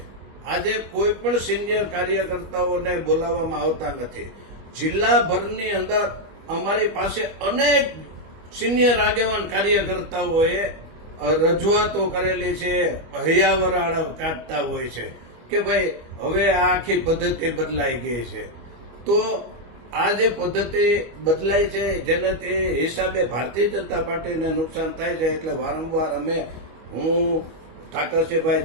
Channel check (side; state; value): left; late; 25 ms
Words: આજે કોઈ પણ સિનિયર કાર્યકર્તાઓને બોલાવવામાં આવતા નથી. જિલ્લાભરની અંદર અમારી પાસે અનેક સિનિયર આગેવાન કાર્યકર્તાઓએ રજૂઆતો કરેલી છે, હૈયાવરાળ કાઢતા હોય છે કે ભાઈ હવે આ આખી પદ્ધતિ બદલાઈ ગઈ છે. તો આ જે પદ્ધતિ બદલાઈ છે જેનાથી હિસાબે ભારતીય જનતા પાર્ટીને નુકસાન થાય છે એટલે વારંવાર હું